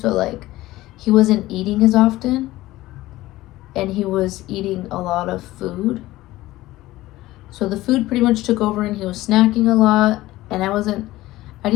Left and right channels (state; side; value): quieter; right; 17.1 dB